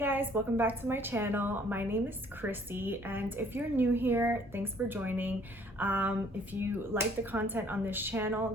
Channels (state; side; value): normal; both; correlation 0.59